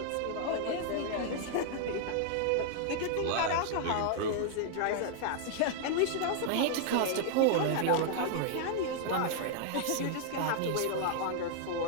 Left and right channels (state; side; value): different; both; correlation 0.00